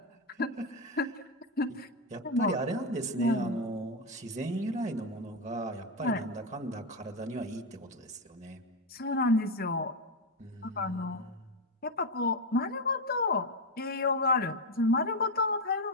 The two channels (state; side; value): normal; both; correlation 0.09